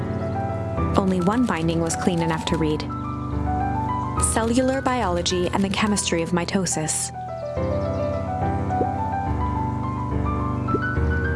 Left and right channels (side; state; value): both; identical; correlation 1.00